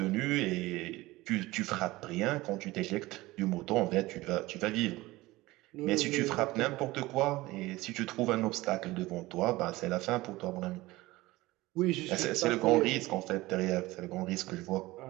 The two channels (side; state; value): left; quieter; 19.3 dB